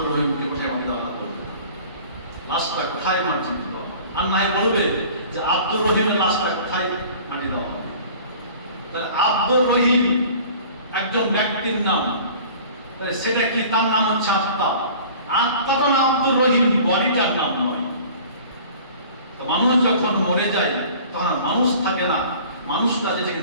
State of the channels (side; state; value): both; inverted; correlation -0.46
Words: রহিমকে কোথায় মাটি দেওয়া হবে, লাশটা কোথায় মাটি দেওয়া হবে, আর নাই বলবে যে আব্দুর রহিমের লাশটা কোথায় মাটি দেওয়া হবে। তাহলে আব্দুর রহিম একজন ব্যক্তির নাম, তাহলে সেটা কি? তার নাম হচ্ছে আত্মা। আত্মাটা নাম আব্দুর রহিম, বডিটার নাম নয়। তো মানুষ যখন মরে যায়, তখন মানুষ থাকে না, মানুষটা